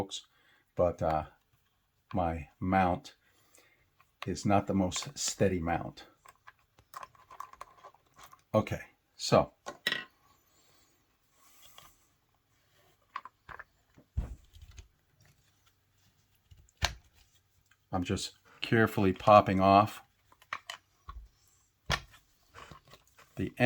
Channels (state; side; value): identical; both; correlation 1.00